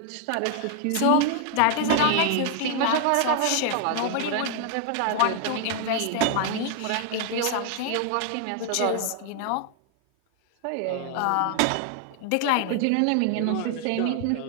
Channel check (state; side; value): different; both; correlation 0.00